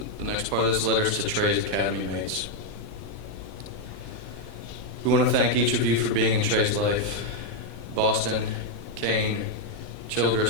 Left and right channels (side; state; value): right; late; 11 ms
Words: The next part of this letter is to Trey's academy mates. We want to thank each of you for being in Trey's life. Boston, Kane,